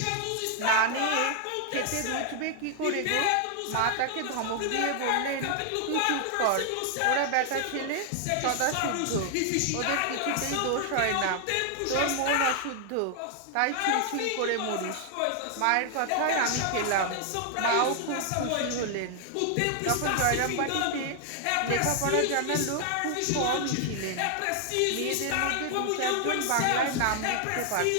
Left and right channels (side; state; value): both; different; correlation 0.00